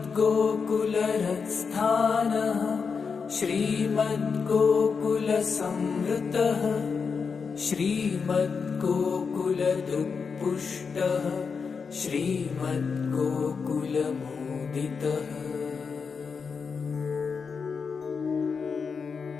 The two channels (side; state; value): right; quieter; 5.5 dB